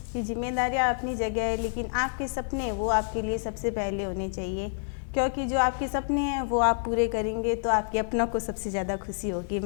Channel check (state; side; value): silent; right; digital silence